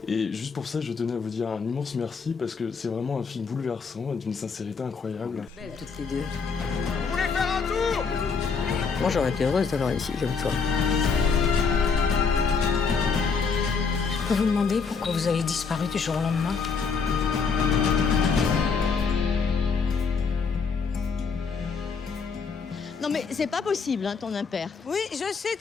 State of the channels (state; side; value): quieter; right; 5.3 dB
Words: Et juste pour ça, je tenais à vous dire un immense merci parce que c'est vraiment un film bouleversant et d'une sincérité incroyable. Belles toutes les deux. Vous voulez faire un tour? Moi, j'aurais été heureuse d'avoir ici comme toi. Je peux vous demander pourquoi vous avez disparu du jour au lendemain? Non mais c'est pas possible, hein, ton impair. Oui, je sais,